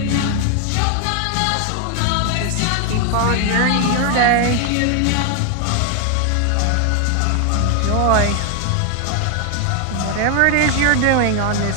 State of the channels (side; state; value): both; different; correlation 0.01